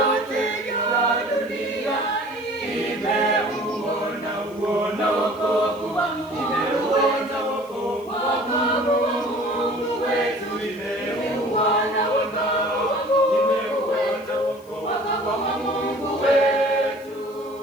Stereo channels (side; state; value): left; noise; hiss, 26 dB below the sound